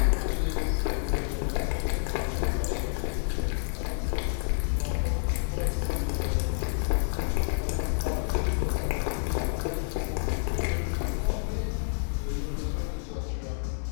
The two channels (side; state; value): right; silent; digital silence